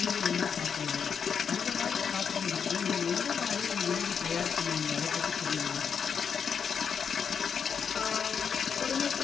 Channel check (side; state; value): right; quieter; 6.8 dB